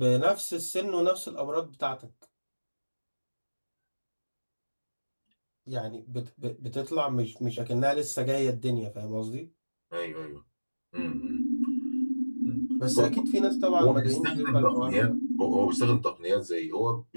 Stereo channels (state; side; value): inverted; both; correlation -1.00